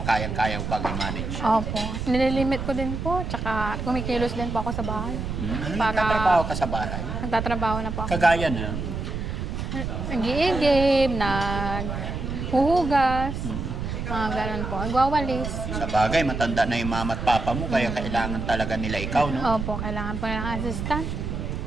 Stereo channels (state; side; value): noise; right; rumble, 4 dB below the sound